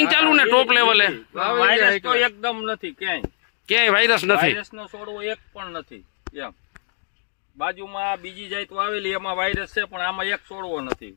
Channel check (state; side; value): silent; right; digital silence